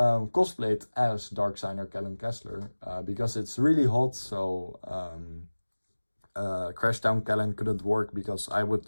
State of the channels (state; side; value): inverted; both; correlation -1.00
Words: as Darksigner Kellen Kessler because it's really hot, so Crashdown Kellen couldn't work because I would